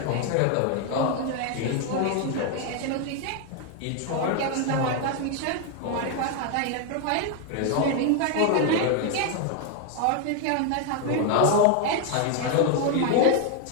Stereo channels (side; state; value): both; different; correlation 0.01